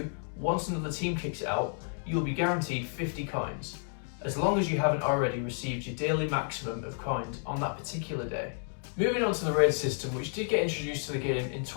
once another team kicks it out, you will be guaranteed 50 coins, as long as you haven't already received your daily maximum of coins on that particular day. Moving on to the raid system, which did get introduced to the game in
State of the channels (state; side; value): silent; right; 57 dB below the other